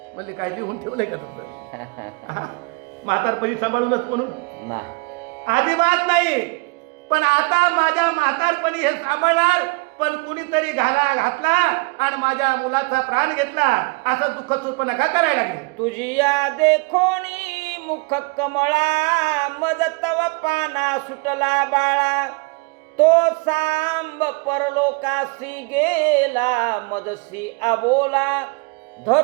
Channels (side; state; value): left; quieter; 30.1 dB